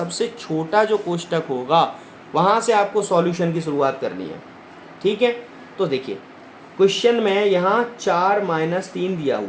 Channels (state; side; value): identical; both; correlation 1.00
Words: छोटा जो कोष्टक होगा वहाँ से आपको सॉल्यूशन की शुरुआत करनी है। ठीक है, तो देखिए क्वेश्चन में यहाँ 4 - 3 दिया